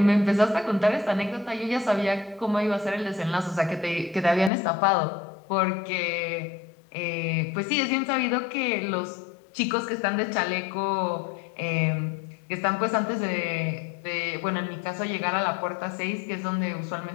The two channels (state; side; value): drops out; right; at 4.5 s